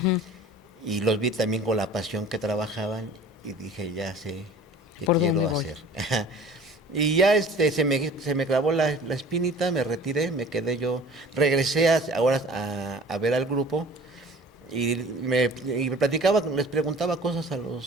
Y los vi también con la pasión que trabajaban y dije, ya sé qué ¿Por quiero dónde voy? hacer. Y ya se me clavó la espinita, me retiré, me quedé yo, regresé ahora a ver al grupo y me platicaba, les preguntaba cosas a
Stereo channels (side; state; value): both; normal; correlation 0.45